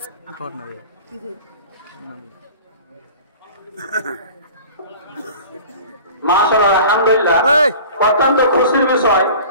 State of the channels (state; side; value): inverted; both; correlation -0.42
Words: corner ya মাশাআল্লাহ আলহামদুলিল্লাহ অত্যন্ত খুশির বিষয়